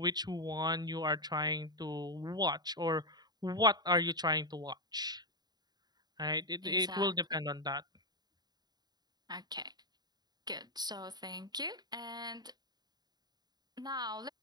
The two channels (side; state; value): left; late; 0.20 ms